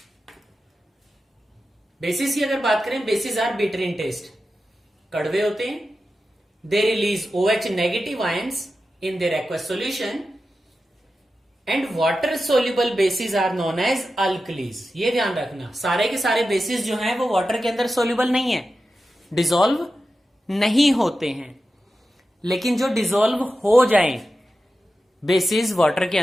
बेसिस की अगर बात करें, bases are bitter in taste, कड़वे होते हैं। They release OH negative ions in their aqueous solution and water soluble bases are known as alkalis. ये ध्यान रखना, सारे के सारे बेसिस जो हैं वो वाटर के अंदर सोल्यूबल नहीं है, डिसॉल्व नहीं होते हैं, लेकिन जो डिसॉल्व हो जाएं बेसिस वाटर के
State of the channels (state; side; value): normal; both; correlation 0.92